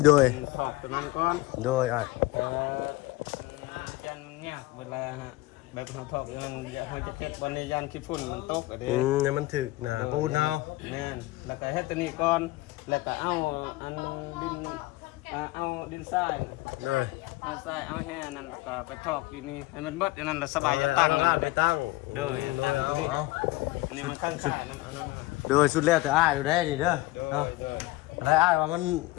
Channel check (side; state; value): right; quieter; 19.3 dB